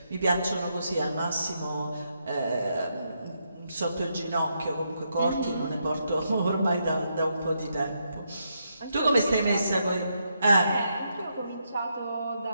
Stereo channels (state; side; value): inverted; both; correlation -0.80